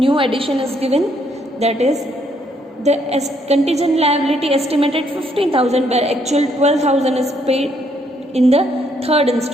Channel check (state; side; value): normal; both; correlation 0.70